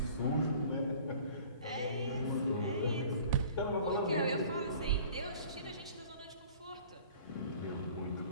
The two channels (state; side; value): inverted; both; correlation -0.48